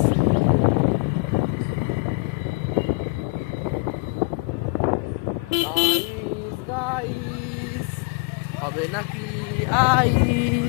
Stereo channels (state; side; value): quieter; right; 29.5 dB